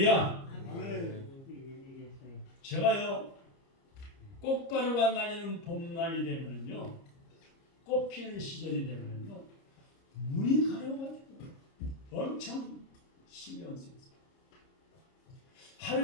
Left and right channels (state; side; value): late; right; 30 ms